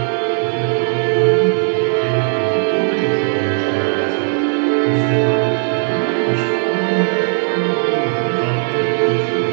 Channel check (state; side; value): silent; left; digital silence